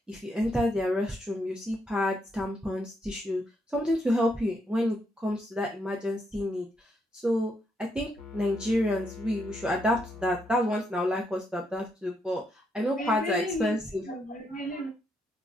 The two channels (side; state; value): both; normal; correlation 0.78